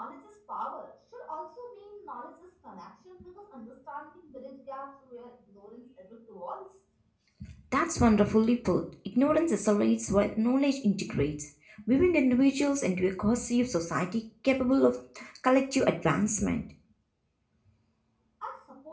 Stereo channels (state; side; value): identical; both; correlation 1.00